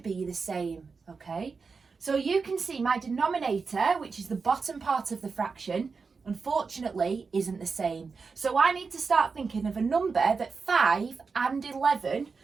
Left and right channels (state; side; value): quieter; left; 4.9 dB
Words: the same, okay? So you can see my denominator, which is the bottom part of the fraction, unfortunately isn't the same. So I need to start thinking of a number that 5 and 11